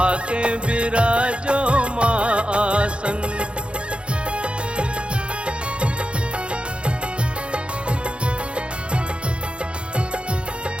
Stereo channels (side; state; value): left; late; 0.057 ms